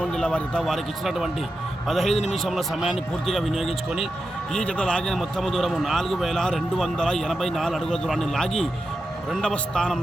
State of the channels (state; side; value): normal; both; correlation 0.89